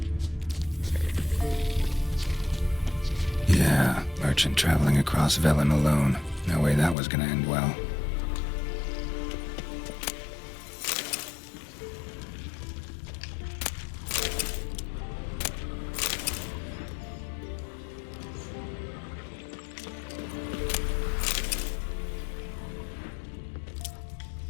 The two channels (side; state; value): right; drops out; at 7.0 s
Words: Yeah, merchant traveling across Velen alone. No way that was gonna end well.